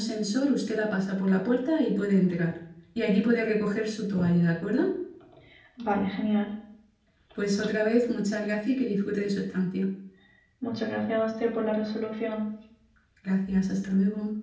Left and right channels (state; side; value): identical; both; correlation 1.00